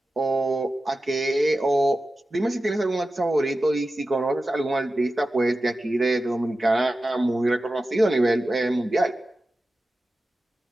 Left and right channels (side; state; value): both; normal; correlation 0.94